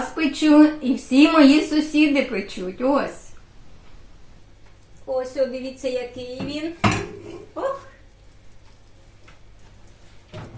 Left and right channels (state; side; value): identical; both; correlation 1.00